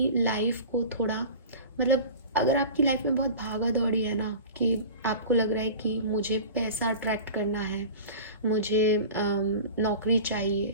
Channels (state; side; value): inverted; both; correlation -0.35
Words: लाइफ को थोड़ा, मतलब अगर आपकी लाइफ में बहुत भागा दौड़ी है ना, कि आपको लग रहा है कि मुझे पैसा अट्रैक्ट करना है, मुझे नौकरी